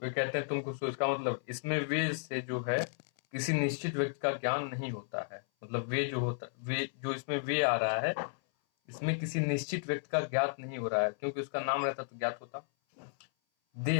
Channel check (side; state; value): right; silent; 55 dB below the other